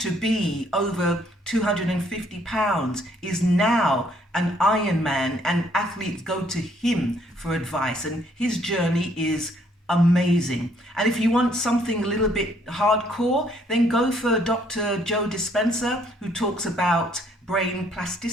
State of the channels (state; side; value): normal; both; correlation 0.66